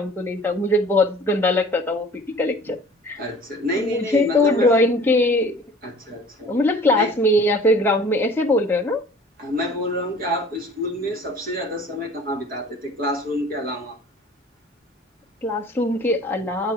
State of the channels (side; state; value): both; normal; correlation 0.47